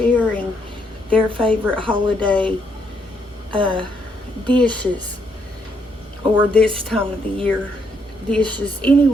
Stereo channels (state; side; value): normal; both; correlation 0.74